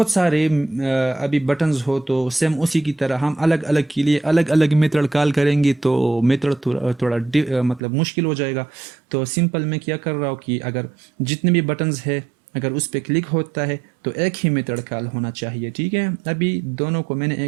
सारे अभी बटन्स हो तो सेम उसी की तरह हम अलग अलग के लिए अलग अलग मेथड कॉल करेंगे तो मेथड थोड़ा मतलब मुश्किल हो जाएगा। तो सिंपल मैं क्या कर रहा हूँ कि अगर जितने भी बटन्स है अगर उस पर क्लिक होता है तो एक ही मेथड कॉल होना चाहिए, ठीक है। अभी दोनों को मैंने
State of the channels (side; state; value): left; drops out; at 7.8 s